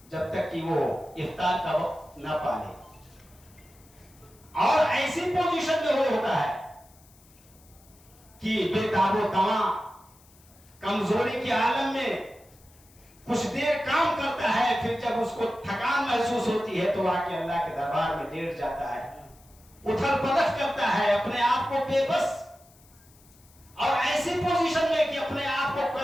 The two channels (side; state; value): left; noise; hiss, 28 dB below the sound